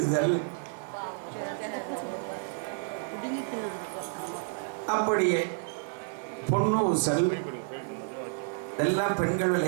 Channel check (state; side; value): silent; left; 58 dB below the other